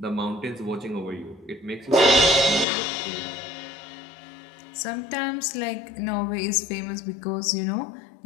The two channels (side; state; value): right; drops out; at 2.7 s